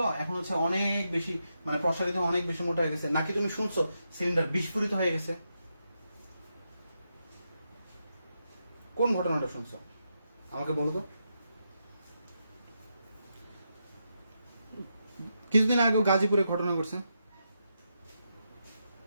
এখন হচ্ছে অনেক বেশি মানে প্রসারিত, অনেক বেশি মোটা হয়ে গেছে? নাকি তুমি শুনছো সিলিন্ডার বিস্ফোরিত হয়ে গেছে? কোন ঘটনাটা শুনছো আমাকে বলো তো। কিছুদিন আগেও গাজীপুরে ঘটনা ঘটছে।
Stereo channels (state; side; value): inverted; both; correlation -0.84